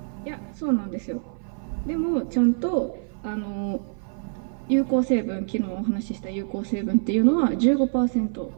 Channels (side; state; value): left; silent; 57 dB below the other